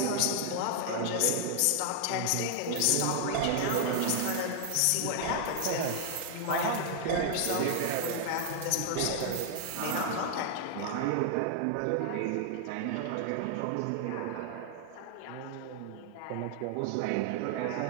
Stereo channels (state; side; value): different; both; correlation 0.00